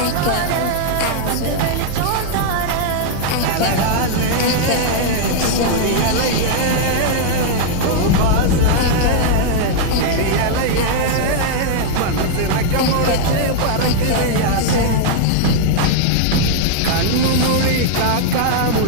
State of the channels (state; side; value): different; both; correlation -0.01